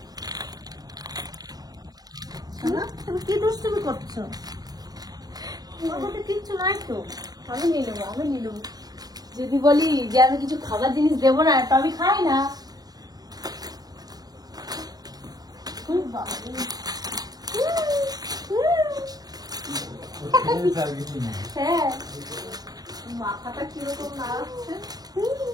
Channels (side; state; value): left; late; 0.19 ms